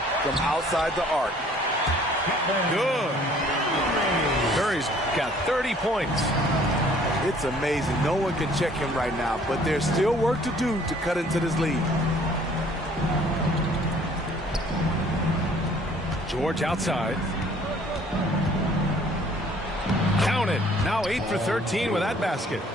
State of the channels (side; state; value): both; normal; correlation 0.57